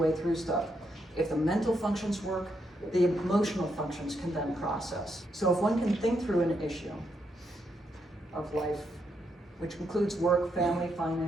through stuff. If the mental functions work, the emotional functions can then process. So if one can think through an issue of life, which includes work, family,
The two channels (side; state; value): both; normal; correlation 0.79